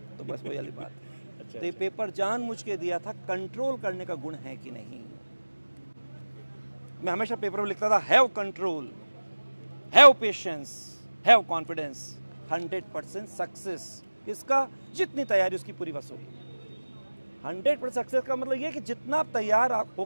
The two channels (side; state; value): both; inverted; correlation -1.00